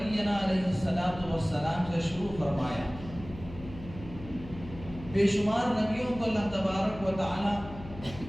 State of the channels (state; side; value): noise; left; hum, 14 dB below the sound